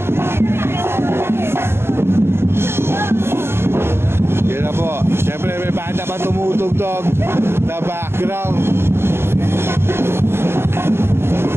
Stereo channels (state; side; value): late; left; 0.12 ms